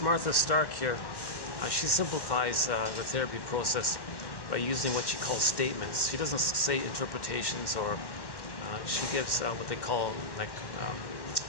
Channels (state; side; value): late; right; 1.1 ms